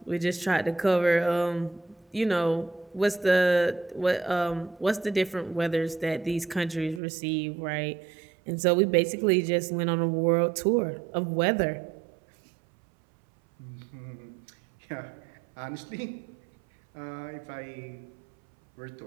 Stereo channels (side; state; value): left; drops out; at 7.0 s